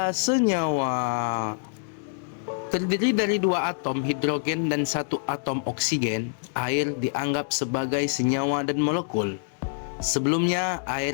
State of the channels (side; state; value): right; silent; digital silence